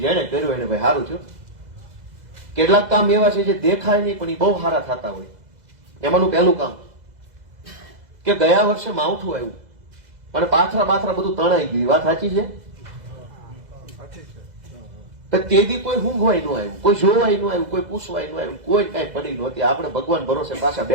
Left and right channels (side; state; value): left; late; 2.0 ms